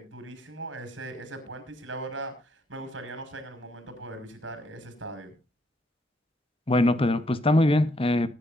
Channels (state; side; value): normal; both; correlation 0.72